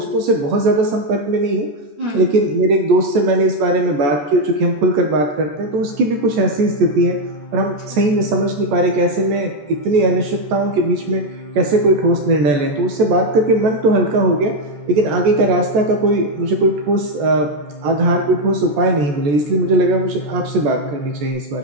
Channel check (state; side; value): late; left; 14 ms